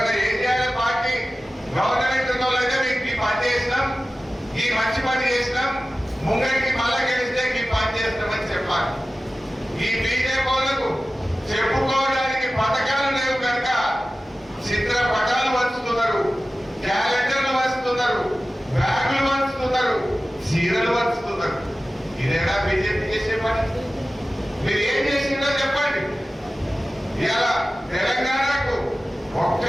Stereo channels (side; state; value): both; normal; correlation 0.96